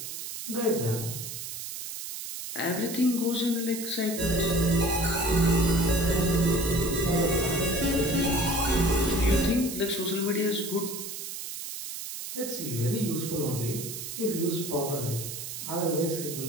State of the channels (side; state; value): right; noise; hiss, 8 dB below the sound